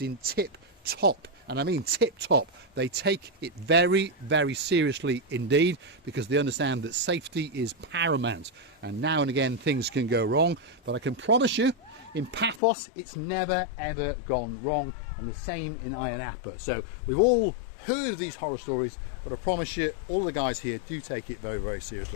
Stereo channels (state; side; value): drops out; right; at 12.6 s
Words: in tip-top. And I mean tip-top. They take it very, very seriously indeed, because they understand that safety is paramount. And now and again things can go wrong, but I can promise you, in Paphos it's never ever gone wrong, and the same in Ayia Napa. So we've all heard of these horror stories, but I promise you, all the guys here do take it very, very